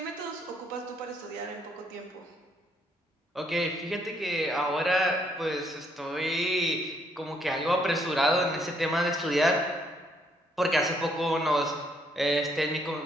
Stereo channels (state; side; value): normal; both; correlation 0.70